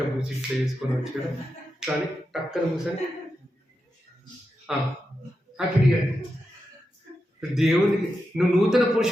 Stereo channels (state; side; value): normal; both; correlation 0.88